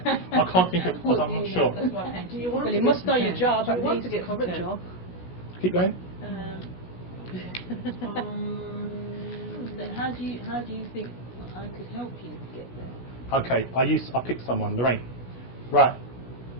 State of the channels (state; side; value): late; right; 16 ms